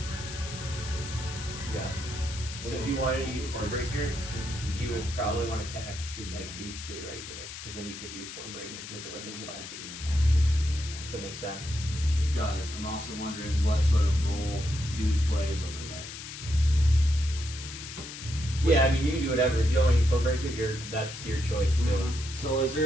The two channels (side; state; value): left; noise; hiss, 11 dB below the sound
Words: Yeah. So if you wanted to use Hornbreaker, you would probably want to attack like these two right here, because then you could use Hornbreaker because they're within 5 feet. Does that make sense? Does. I'm also wondering what sort of role dude plays over there. Yeah, I mean you can do whatever. If you don't want to use Hornbreaker, that's your choice too. So is